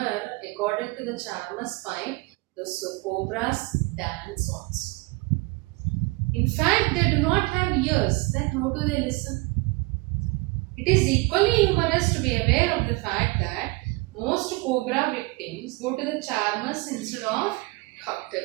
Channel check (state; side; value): quieter; left; 24.5 dB